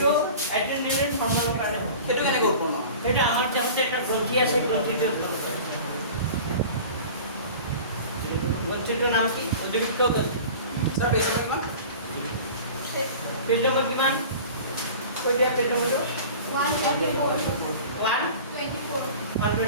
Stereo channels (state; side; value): inverted; both; correlation -0.39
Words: এড্ৰেনালিন হৰমোনৰ কাৰণে হেটো কেনে উৎপন্ন এটা আমাৰ দেহতে এটা গ্ৰন্থি আছে গ্ৰন্থিটো উৎপন্ন কৰে গ্ৰন্থিটোৰ নাম কি অধিবৃক্ক গ্ৰন্থি স্যাৰ পেজ কিমান পেজ নম্বৰ কিমান কৈ দিয়া পেজ নম্বৰটো 124